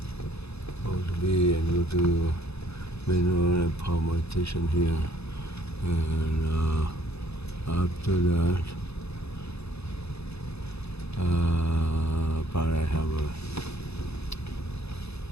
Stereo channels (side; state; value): right; late; 0.79 ms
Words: Go to B and go to Mineral and Palmer station here, and after that Paradise Harbor.